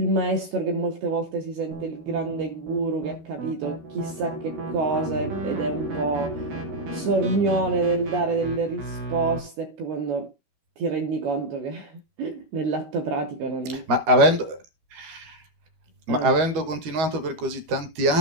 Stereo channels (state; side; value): late; left; 13 ms